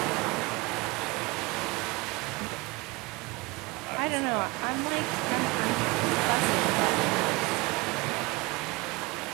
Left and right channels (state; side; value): quieter; left; 24.9 dB